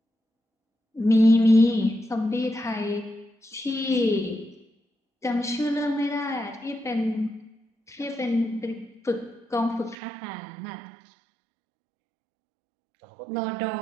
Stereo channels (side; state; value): left; drops out; at 10.0 s